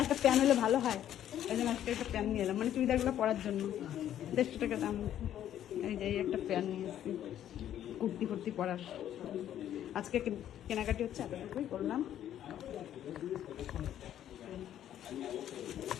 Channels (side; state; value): right; quieter; 11.1 dB